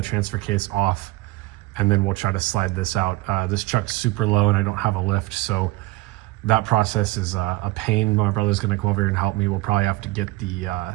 transfer case off, and then we'll try to slide this out. This truck's super low and I don't have a lift, so that process is a pain. My brother's gonna come over here and help me. We'll probably have to get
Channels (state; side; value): quieter; left; 19.6 dB